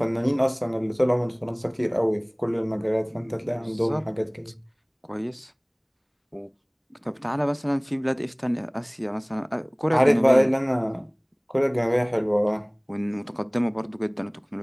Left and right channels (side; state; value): both; identical; correlation 1.00